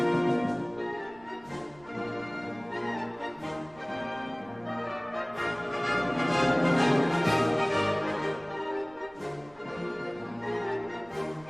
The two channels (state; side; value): noise; right; rumble, 26 dB below the sound